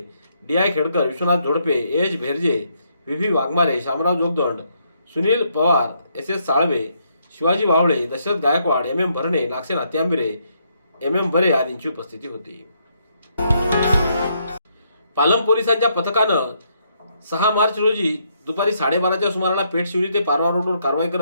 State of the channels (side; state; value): both; inverted; correlation -0.74